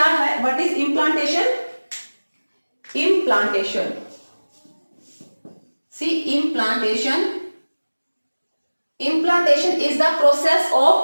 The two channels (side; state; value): both; inverted; correlation -1.00